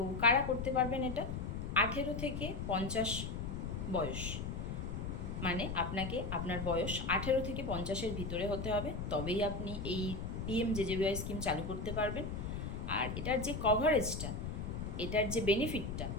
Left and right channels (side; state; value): left; noise; rumble, 4 dB below the sound